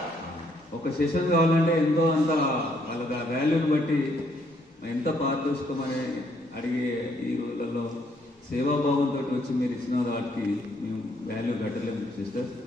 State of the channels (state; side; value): normal; both; correlation 0.70